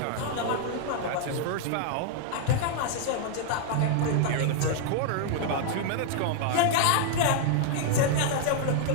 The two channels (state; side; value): different; both; correlation 0.00